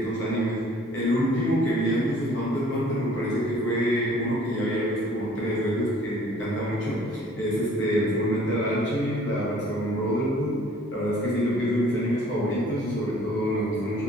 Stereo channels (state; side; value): normal; both; correlation 0.55